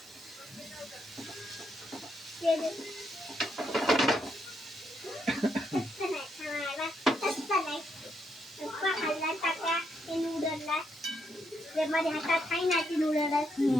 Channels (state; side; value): normal; both; correlation 0.77